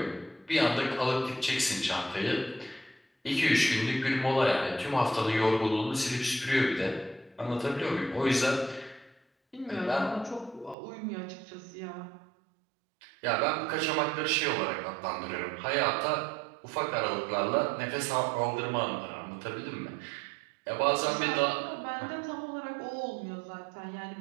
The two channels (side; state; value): left; drops out; at 10.8 s